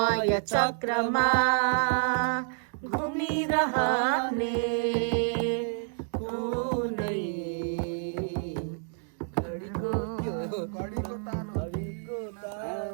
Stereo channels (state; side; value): silent; left; digital silence